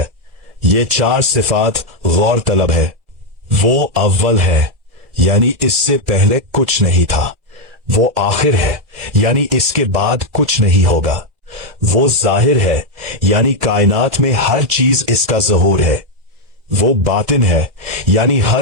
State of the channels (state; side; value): late; left; 2.3 ms